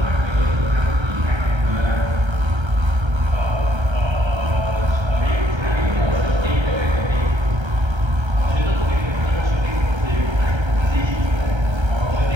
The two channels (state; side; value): late; left; 1.3 ms